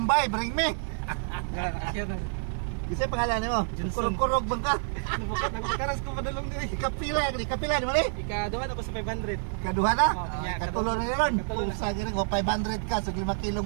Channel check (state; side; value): silent; left; digital silence